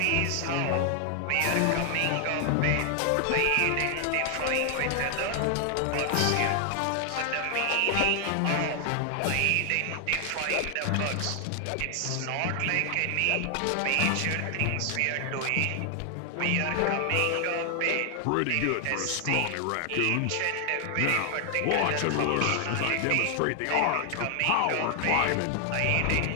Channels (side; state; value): both; different; correlation 0.00